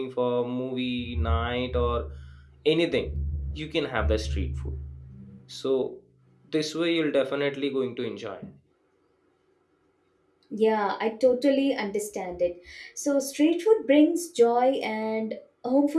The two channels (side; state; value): both; identical; correlation 1.00